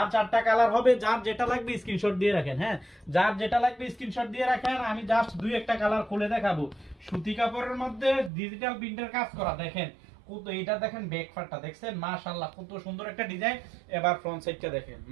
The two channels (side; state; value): left; drops out; at 8.3 s